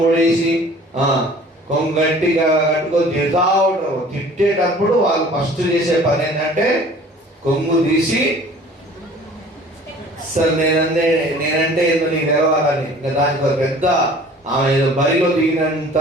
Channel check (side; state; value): both; normal; correlation 0.48